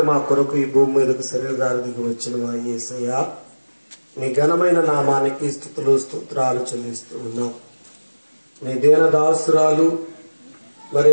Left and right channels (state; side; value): inverted; both; correlation -1.00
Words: మా కొరకు ఈ భూమి మీదకు శరీరధారి దిగి వచ్చిన మా యేసయ్య, మీ ఘనమైన నామానికి స్తుతులు స్తోత్రాలు చెల్లిస్తూ ఉన్నాం. మీ దీనదాసురాలు మరి